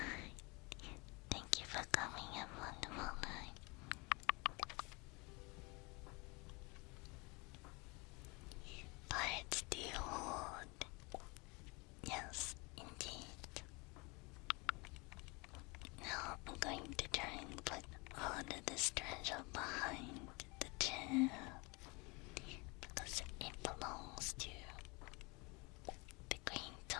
Thank you for coming. Have a wonderful night. Pirates do hold. Yes, indeed. Now I'm going to try and put all of this treasure behind the chair because it belongs to the queen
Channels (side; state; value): right; quieter; 27.8 dB